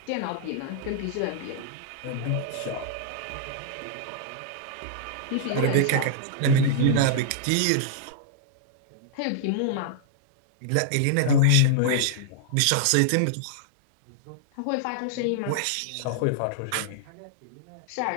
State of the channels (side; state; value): both; different; correlation -0.01